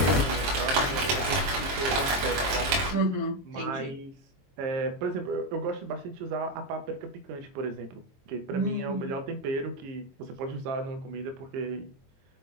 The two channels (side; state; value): left; late; 22 ms